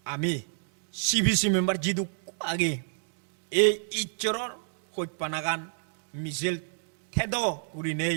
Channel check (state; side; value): silent; left; digital silence